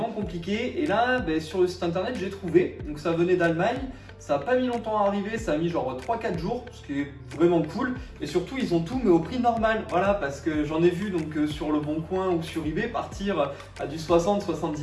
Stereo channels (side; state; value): both; identical; correlation 1.00